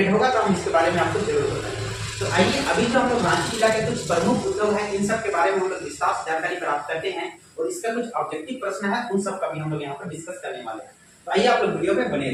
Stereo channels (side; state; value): both; identical; correlation 1.00